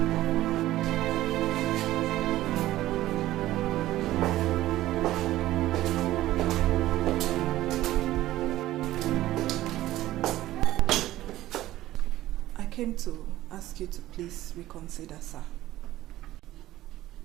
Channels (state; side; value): quieter; left; 15.2 dB